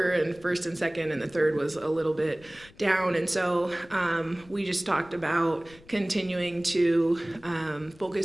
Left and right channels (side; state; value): left; noise; rumble, 24 dB below the sound